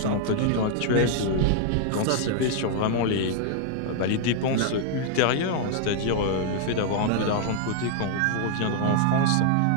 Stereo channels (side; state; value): both; different; correlation 0.00